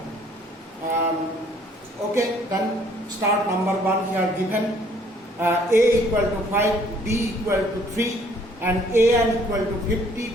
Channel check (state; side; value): normal; both; correlation 0.61